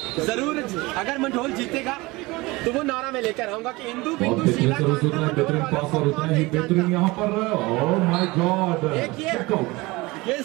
जरूर, अगर मंडोल जीतेगा तो वो नारा में लेकर आऊंगा कि हिंदू बेहतरीन पास और उतना ही बेहतरीन यहाँ पर। ओह माय गॉड, ये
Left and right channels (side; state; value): left; quieter; 22.1 dB